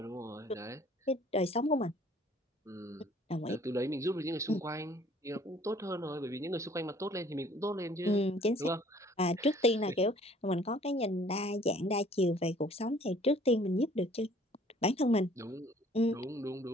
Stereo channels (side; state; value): both; normal; correlation 0.56